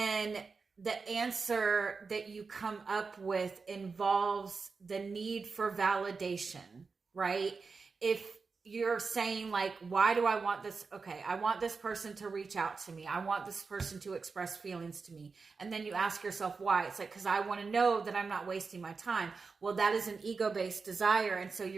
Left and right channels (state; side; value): quieter; left; 4.7 dB